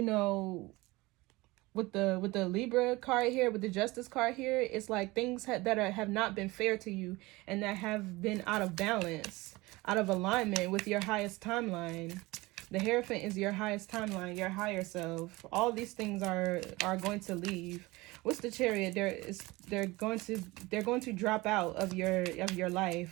with the Libra card here, with the Justice card here, it's like things that have not been fair to you, and that have been out of balance, out of alignment with your highest timeline. The Hierophant is your highest timeline, your higher self. All these things are going to leave. What's the Chariot? They're going to drop out of your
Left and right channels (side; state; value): left; quieter; 21.6 dB